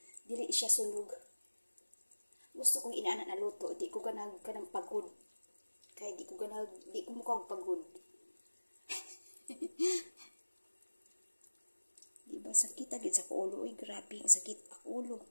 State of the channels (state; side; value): inverted; both; correlation -1.00